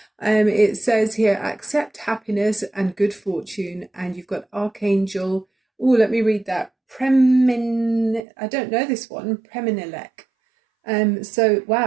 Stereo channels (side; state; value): left; drops out; at 8.2 s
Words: It says here, accept happiness and good fortune, and you've got Archangel. Oh, let me read that. I don't know this one. Preminilek. So